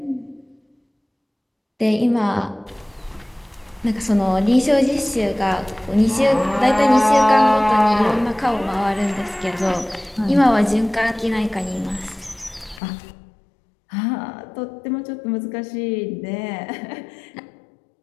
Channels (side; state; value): right; drops out; at 12.8 s